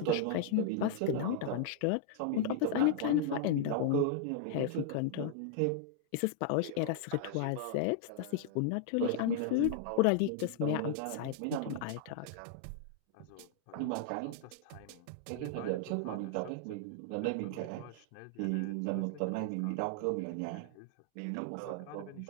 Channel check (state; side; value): different; both; correlation 0.00